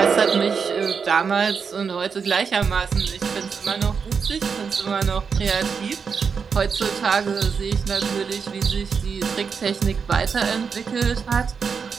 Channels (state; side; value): quieter; left; 5.9 dB